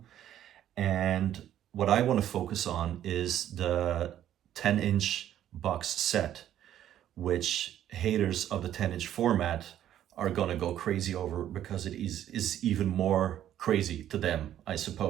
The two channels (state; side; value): quieter; left; 11.4 dB